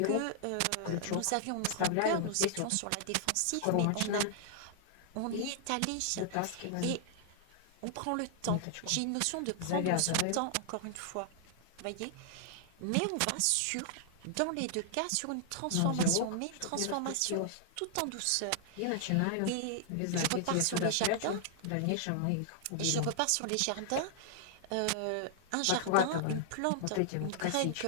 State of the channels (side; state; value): both; different; correlation -0.01